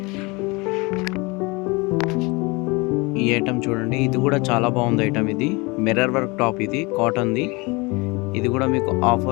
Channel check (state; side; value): quieter; right; 26.3 dB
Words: ఈ ఐటమ్ చూడండి, ఇది కూడా చాలా బాగుంది ఐటమ్. ఇది మిర్రర్ వర్క్ టాప్, ఇది కాటన్ది. ఇది కూడా మీకు